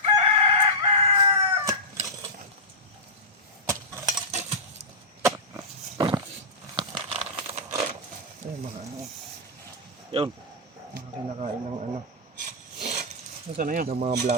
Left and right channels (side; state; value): both; normal; correlation -0.13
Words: Ay, mga ano, Yun. mga kinakain ng ano, Nasaan na yun? ng mga